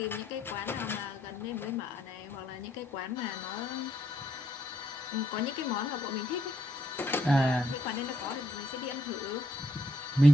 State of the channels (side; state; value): both; normal; correlation 0.73